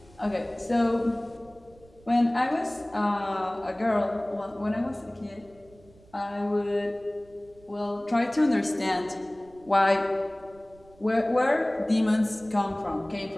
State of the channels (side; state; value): right; noise; rumble, 27 dB below the sound